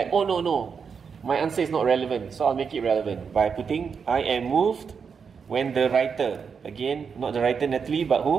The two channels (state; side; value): quieter; left; 6.1 dB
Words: oh no. My answer is not relevant, so I'll make it relevant by putting, I am moved when the writer, again, not the writer Natalie, but